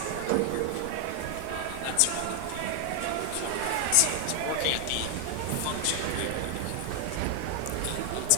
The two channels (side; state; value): both; different; correlation 0.00